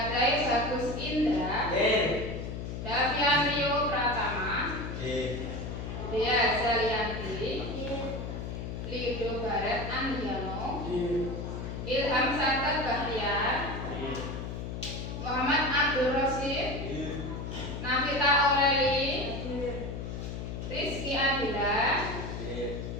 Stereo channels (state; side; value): noise; left; hum, 6 dB below the sound